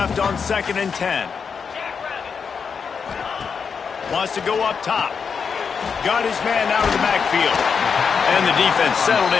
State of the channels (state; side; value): quieter; right; 6.1 dB